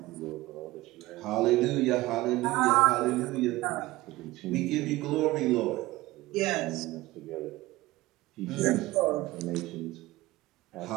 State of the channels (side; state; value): left; quieter; 18.8 dB